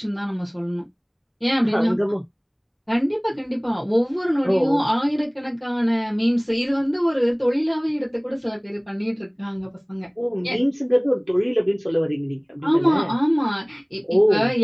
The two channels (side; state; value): both; identical; correlation 1.00